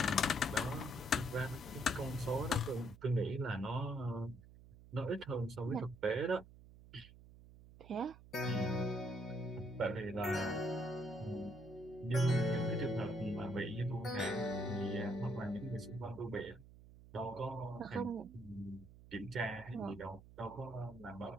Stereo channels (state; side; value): noise; right; hum, 19 dB below the sound